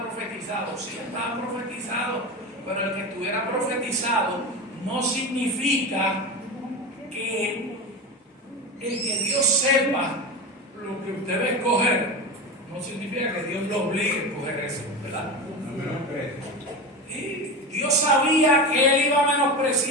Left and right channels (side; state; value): both; normal; correlation 0.24